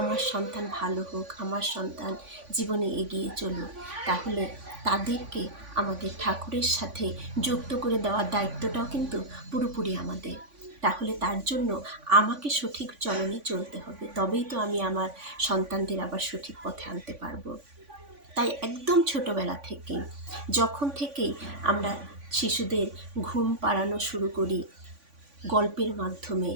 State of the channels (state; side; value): late; left; 3.5 ms